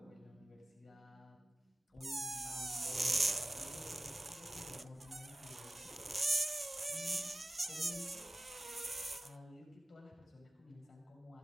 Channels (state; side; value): normal; both; correlation 0.94